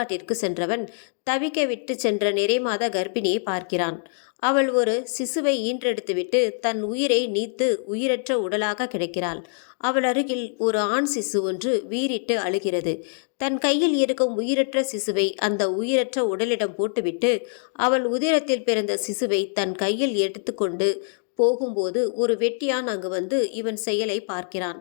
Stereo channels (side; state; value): right; silent; digital silence